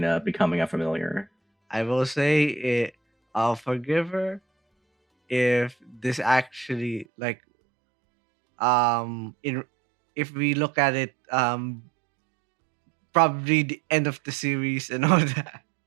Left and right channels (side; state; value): left; drops out; at 7.1 s